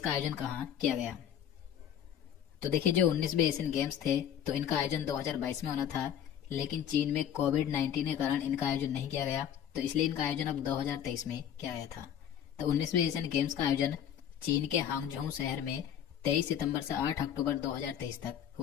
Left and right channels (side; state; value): right; quieter; 9.7 dB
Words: का आयोजन कहाँ किया गया? तो देखिए, जो 19वें एशियन गेम्स थे तो इनका आयोजन 2022 में होना था, लेकिन चीन में कोविड-19 के कारण इनका आयोजन नहीं किया गया, तो इसलिए इनका आयोजन अब 2023 में किया गया था। तो 19वें एशियन गेम्स का आयोजन चीन के हांगझोउ शहर में 23 सितंबर से 8 अक्टूबर 2023 तक